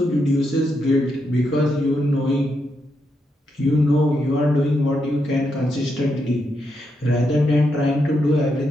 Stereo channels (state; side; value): normal; both; correlation 0.82